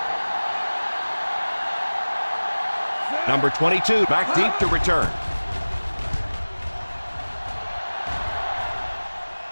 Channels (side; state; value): both; inverted; correlation -1.00